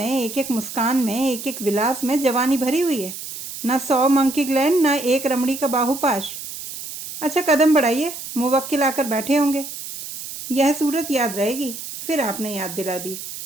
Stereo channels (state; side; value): noise; right; hiss, 10 dB below the sound